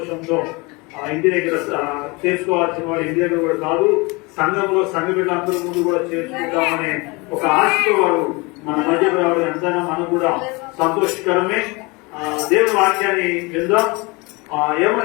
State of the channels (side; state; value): right; quieter; 26.6 dB